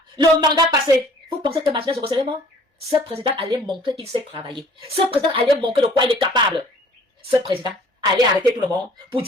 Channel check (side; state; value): both; normal; correlation 0.53